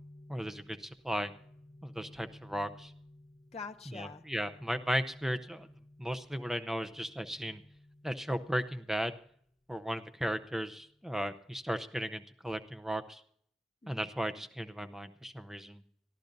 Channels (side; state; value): both; normal; correlation 0.93